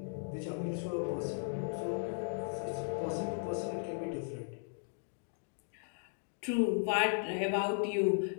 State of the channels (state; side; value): silent; right; digital silence